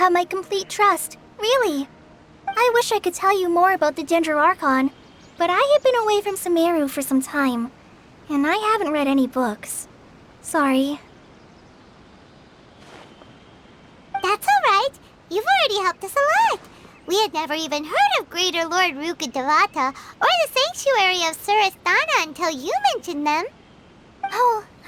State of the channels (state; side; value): identical; both; correlation 1.00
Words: my complete trust, really. I wish I could tell you more about the Dendro Archon, but I have been away from Sumeru for some time, and I haven't read any books. Sorry. That's alright. You've already helped us a lot. We had never even heard of Greater Lord Rukkhadevata or the Sanctuary of Surasthana until you mentioned them. Oh,